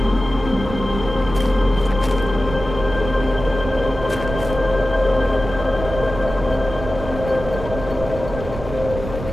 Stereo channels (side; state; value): right; noise; rumble, 9 dB below the sound